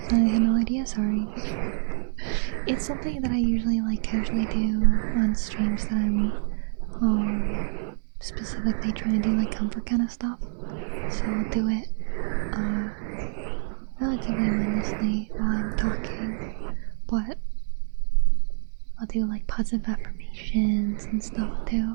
had no idea, sorry. It's something that I usually like casually do on streams that I'm specifically trying to do like comfort kind of stuff. So I'll do it relatively mindlessly while I'm talking, but I'll do like positive affirmations and stuff too.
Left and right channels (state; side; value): silent; left; digital silence